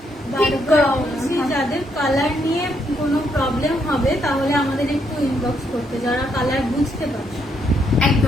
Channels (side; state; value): both; normal; correlation 0.75